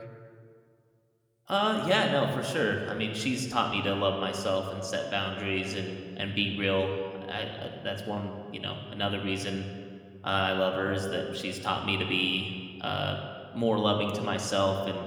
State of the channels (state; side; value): identical; both; correlation 1.00